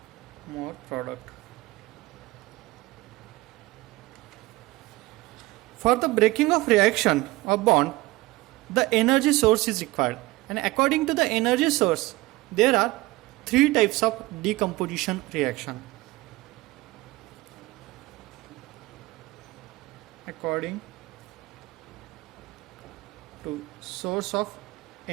more product. For the breaking of reaction or bond, the energy source is required, And according to the energy source, there are three types of decomposition reaction. According to source of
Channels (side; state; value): left; quieter; 20.2 dB